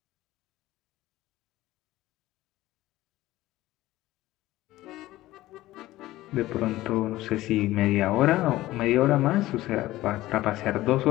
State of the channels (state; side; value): quieter; right; 16.6 dB